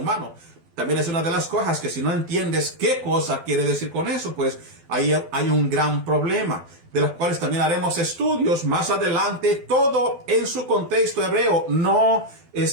También es una de las cosas que si no entiendes qué cosa quiere decir con eso, pues ahí hay un gran problema, de los cuales también haremos estudios más adelante, todo en su contexto hebreo. No,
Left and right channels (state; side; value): late; left; 12 ms